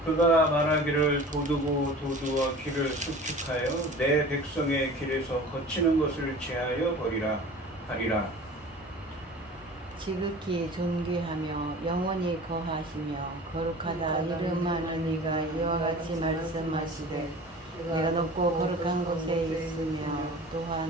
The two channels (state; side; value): normal; both; correlation 0.40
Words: 그가 말하기를 도두고 도두어 길을 수축하여 내 백성의 길에서 거치는 것을 제하여 버리라 하리라. 지극히 존귀하며 영원히 거하시며 거룩하다 이름하는 이가 이와 같이 말씀하시되 내가 높고 거룩한 곳에 있으며